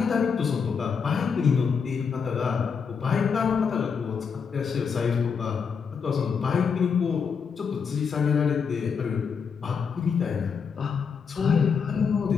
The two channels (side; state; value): right; quieter; 6.1 dB